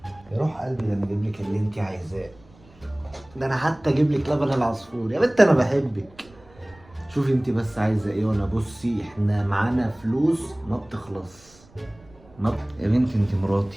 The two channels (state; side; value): noise; right; rumble, 26 dB below the sound